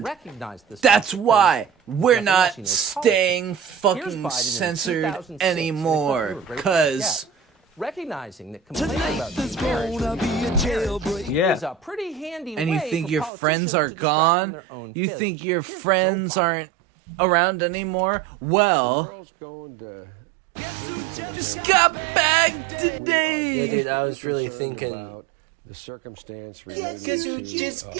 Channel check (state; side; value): drops out; left; at 13.3 s